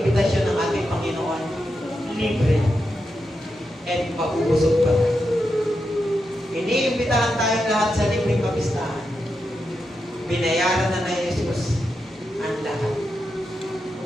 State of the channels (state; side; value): normal; both; correlation 0.87